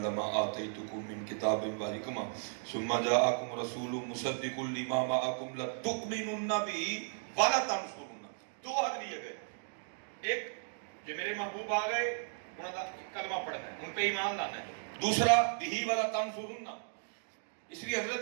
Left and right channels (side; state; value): left; silent; digital silence